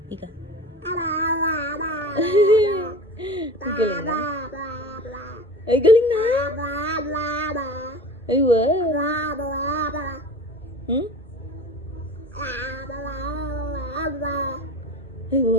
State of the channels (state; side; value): normal; both; correlation 0.36